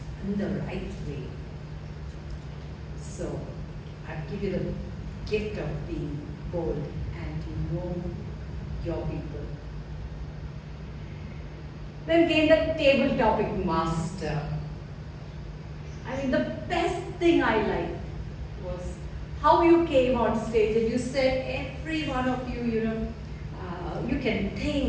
in the right way. So I give you the gift of being bold and to know your people. Then came the table topic master. I mean, the best thing I liked was how you came on stage and you said every one of you, you can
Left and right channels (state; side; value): identical; both; correlation 1.00